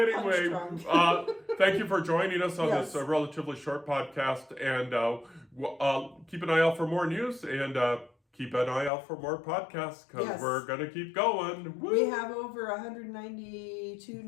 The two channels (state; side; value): drops out; right; at 8.9 s